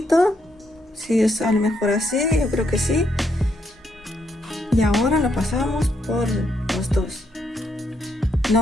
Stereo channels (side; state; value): both; normal; correlation 0.76